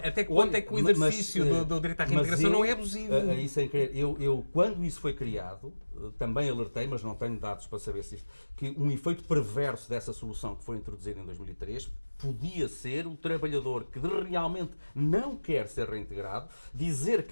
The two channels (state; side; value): inverted; both; correlation -1.00